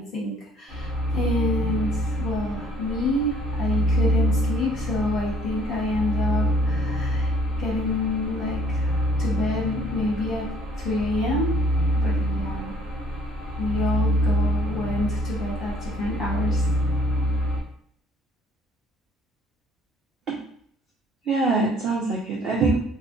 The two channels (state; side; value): normal; both; correlation 0.60